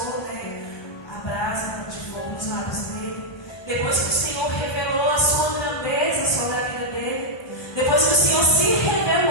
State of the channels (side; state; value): right; late; 1.1 ms